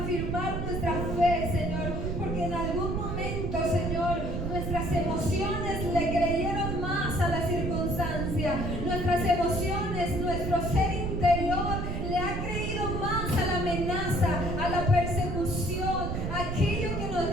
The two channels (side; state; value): right; noise; rumble, 2 dB below the sound